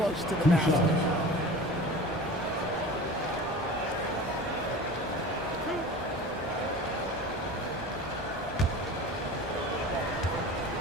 to the basket.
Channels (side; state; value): both; normal; correlation 0.36